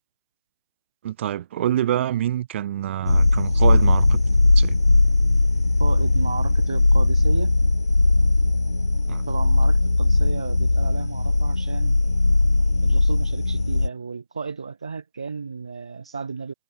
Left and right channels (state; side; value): inverted; both; correlation -0.94